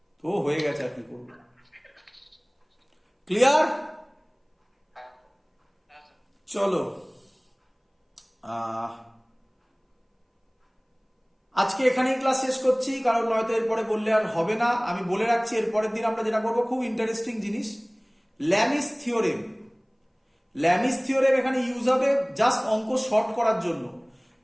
তো হয়ে গেছে, আর কি করবো। ক্লিয়ার? হ্যাঁ হ্যাঁ স্যার। চলো, আজকে এখানেই ক্লাস শেষ করছি, কারণ নয়তো এরপরে বললে আর হবে না। আমি বলে রাখছি এরপরের দিন আমরা যেটা করবো, খুব ইন্টারেস্টিং জিনিস, ল্যামিস থিওরেম। ল্যামিস থিওরেম এখানে ইউজ হবে জাস্ট অঙ্ক শর্ট করার জন্য।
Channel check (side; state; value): both; identical; correlation 1.00